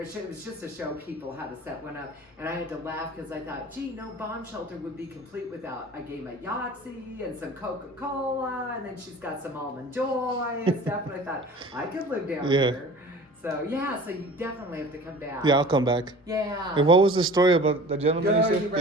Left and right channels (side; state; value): both; normal; correlation 0.42